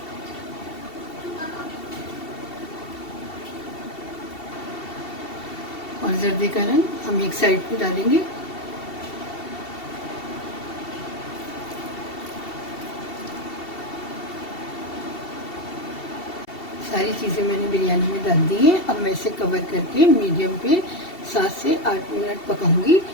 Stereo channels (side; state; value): right; late; 2.7 ms